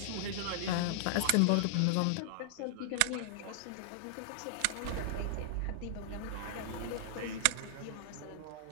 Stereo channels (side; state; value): both; different; correlation -0.01